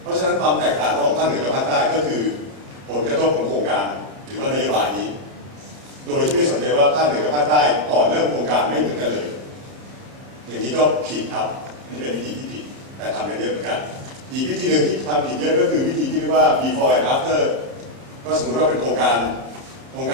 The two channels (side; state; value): left; late; 30 ms